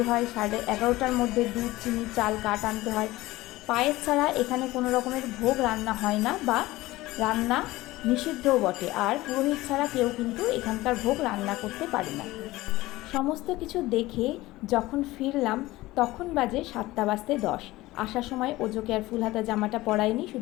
হয়, 11:30টার মধ্যে দুধ, চিনি, চাল, কাঠ আনতে হয়। পায়েস ছাড়া এখানে কোনো রকমের ভোগ রান্না হয় না, বা রান্না নিষিদ্ধও বটে। আর পুরোহিত ছাড়া কেউ কিন্তু এখানকার ভোগ রান্না করতে পারে না। সমস্ত কিছু দেখে যখন ফিরলাম তখন বাজে 7:10। আসার সময় ওজোকে আর ফুল হাতা জামাটা পরাইনি,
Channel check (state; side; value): quieter; right; 18.4 dB